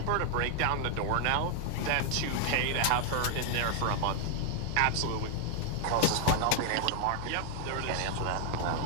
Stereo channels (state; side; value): different; both; correlation 0.00